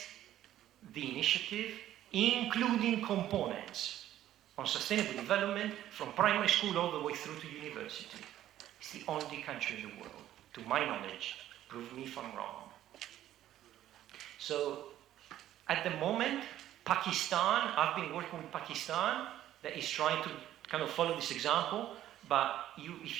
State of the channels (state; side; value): quieter; left; 12.7 dB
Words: the initiative, including components on sustainable development from primary school all the way through to university. It's the only country in the world, to my knowledge. Prove me if I'm wrong. So, at the moment, Pakistan, I've been working with Pakistan, that is trying to kind of follow this example, but